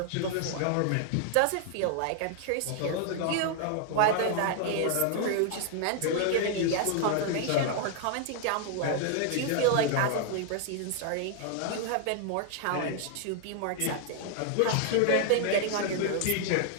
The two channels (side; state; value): both; different; correlation 0.00